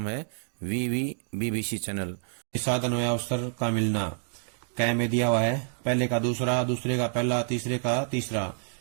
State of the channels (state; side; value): silent; left; digital silence